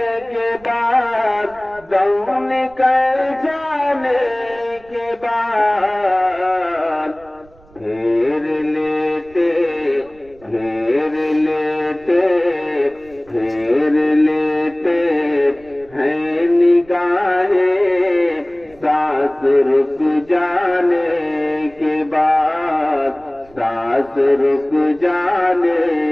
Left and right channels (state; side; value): noise; right; rumble, 27 dB below the sound